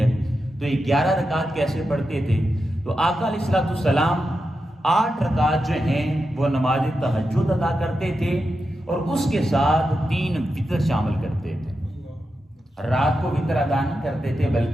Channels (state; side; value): normal; both; correlation 0.88